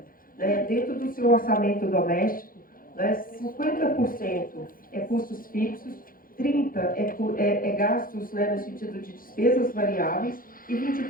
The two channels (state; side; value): late; right; 0.41 ms